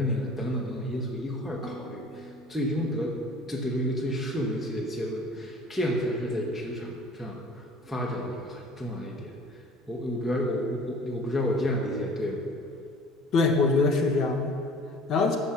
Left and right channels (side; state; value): both; normal; correlation 0.47